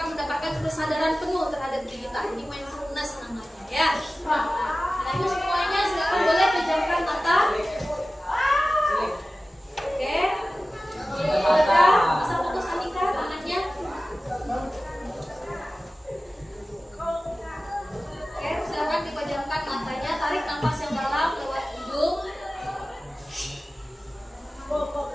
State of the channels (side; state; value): both; normal; correlation 0.96